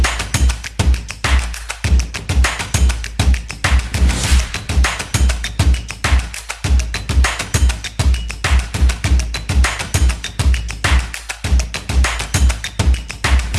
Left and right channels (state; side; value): identical; both; correlation 1.00